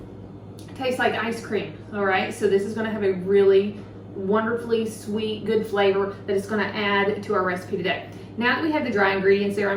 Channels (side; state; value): both; identical; correlation 1.00